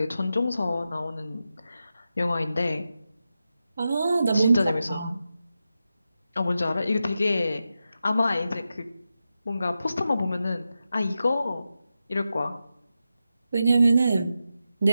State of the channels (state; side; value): inverted; both; correlation -0.90